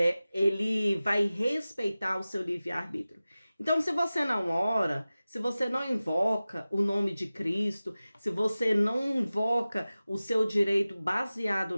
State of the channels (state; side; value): inverted; both; correlation -0.96